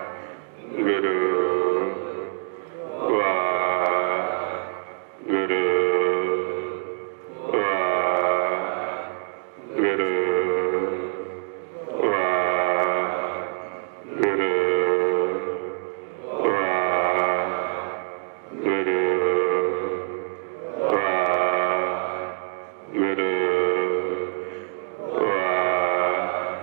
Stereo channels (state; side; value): silent; left; digital silence